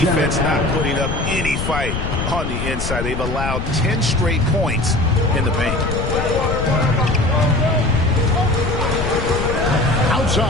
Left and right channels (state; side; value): noise; left; rumble, 3 dB below the sound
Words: defense not putting up any fight on the inside. They've allowed 10 straight points in the paint.